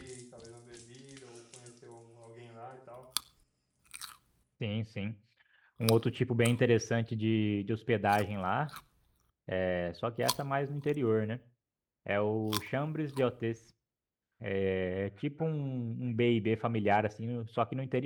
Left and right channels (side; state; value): both; identical; correlation 1.00